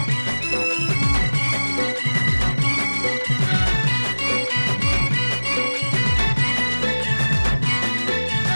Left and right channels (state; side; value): inverted; both; correlation -1.00